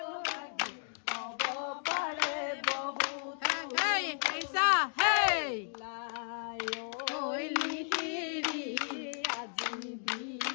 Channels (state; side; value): silent; right; 55 dB below the other